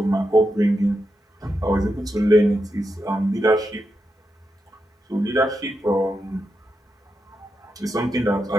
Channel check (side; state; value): both; normal; correlation 0.86